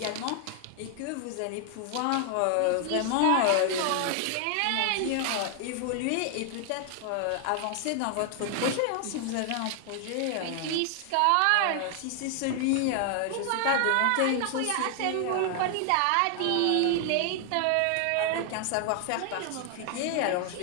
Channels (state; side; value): different; both; correlation 0.00